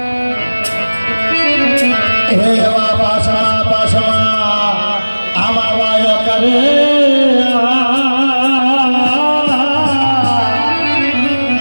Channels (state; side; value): inverted; both; correlation -1.00